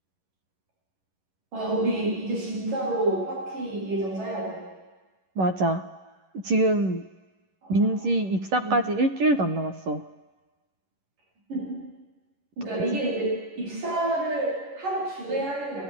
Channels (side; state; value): left; late; 11 ms